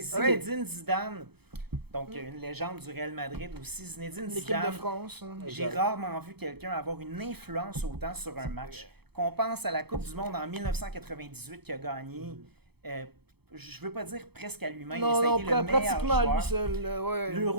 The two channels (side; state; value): left; late; 0.97 ms